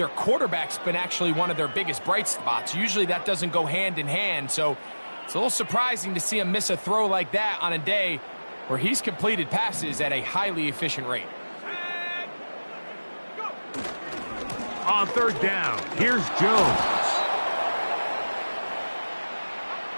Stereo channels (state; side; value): inverted; both; correlation -1.00